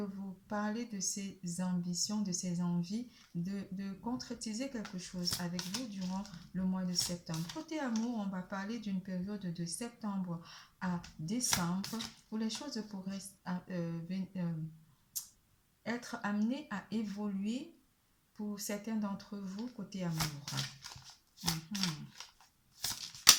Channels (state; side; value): identical; both; correlation 1.00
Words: vous parler de ses ambitions, de ses envies, de concrétiser quelque chose avec vous durant le mois de septembre. Côté amour, on va parler d'une période de septembre à décembre où les choses pourraient être amenées à évoluer pour certains d'entre vous côté amour.